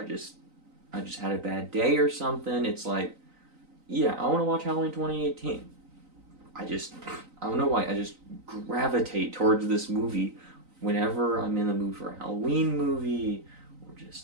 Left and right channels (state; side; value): late; left; 3.9 ms